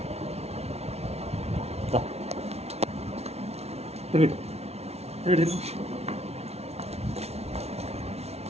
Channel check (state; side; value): late; left; 0.31 ms